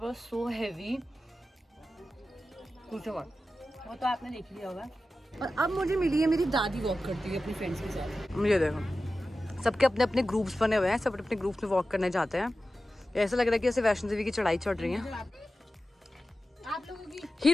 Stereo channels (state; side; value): normal; both; correlation 0.94